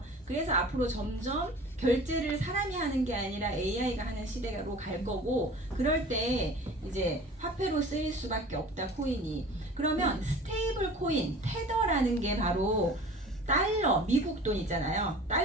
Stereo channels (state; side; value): normal; both; correlation 0.42